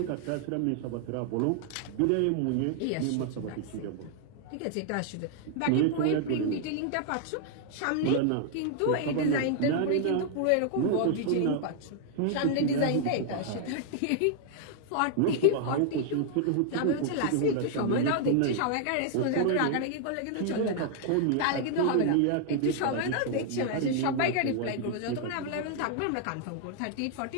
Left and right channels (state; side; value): different; both; correlation 0.00